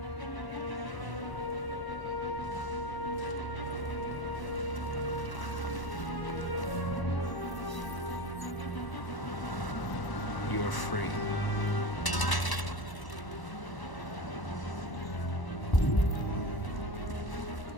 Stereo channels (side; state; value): right; late; 1.0 ms